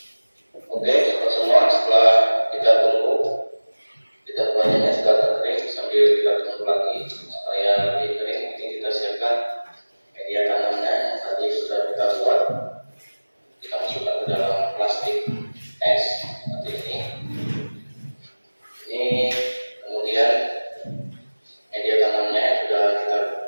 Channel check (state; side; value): inverted; both; correlation -1.00